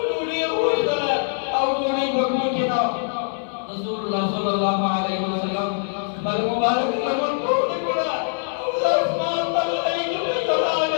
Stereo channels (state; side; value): silent; right; 56 dB below the other